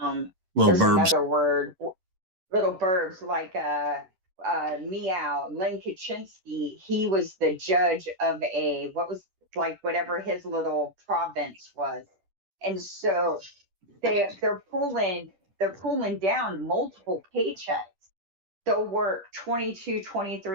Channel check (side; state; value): left; late; 10 ms